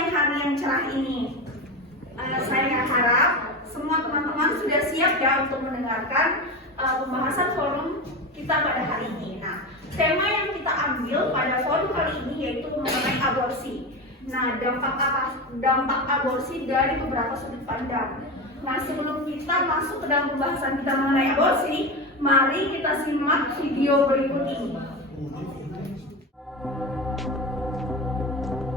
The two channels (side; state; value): both; normal; correlation 0.22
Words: hari yang cerah ini? Saya harap semua teman-teman sudah siap ya untuk mendengarkan pembahasan forum kita pada hari ini. Nah, tema yang kita ambil pada forum kali ini yaitu mengenai aborsi. Nah, dampak aborsi dari beberapa sudut pandang. Nah, sebelum kita masuk ke dalam pembahasan kita mengenai aborsi, mari kita simak video berikut ini.